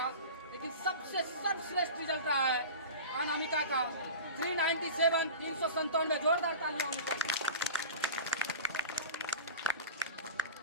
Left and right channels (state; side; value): inverted; both; correlation -0.34